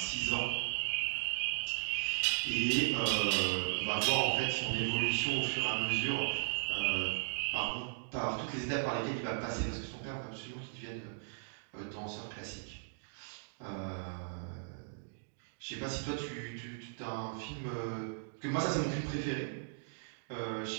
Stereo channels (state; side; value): silent; left; digital silence